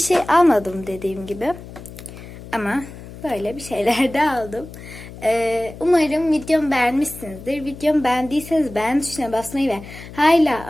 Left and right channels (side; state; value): left; noise; hum, 15 dB below the sound